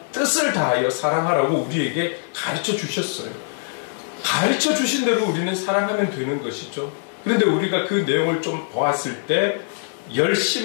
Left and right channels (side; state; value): right; silent; digital silence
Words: 뜻을 다하여 사랑하라고 우리에게 가르쳐 주셨어요. 가르쳐 주신 대로 우리는 사랑하면 되는 것이죠. 그런데 우리가 그 내용을 좀 보았을 때,